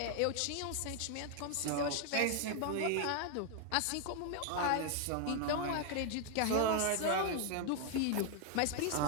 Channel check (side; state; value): both; different; correlation 0.00